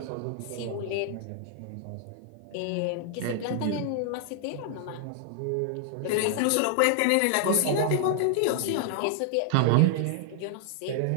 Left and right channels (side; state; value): both; different; correlation -0.01